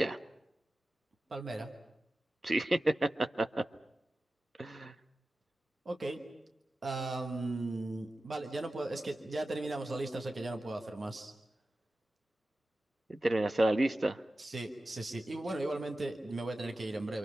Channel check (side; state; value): both; normal; correlation 0.94